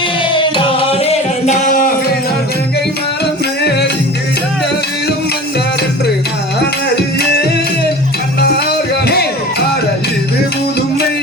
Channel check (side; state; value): both; normal; correlation 0.38